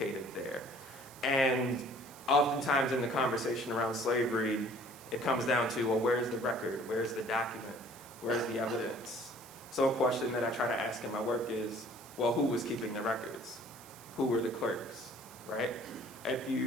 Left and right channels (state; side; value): noise; right; hiss, 19 dB below the sound